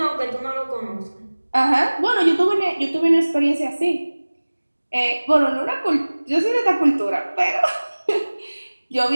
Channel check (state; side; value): inverted; both; correlation -1.00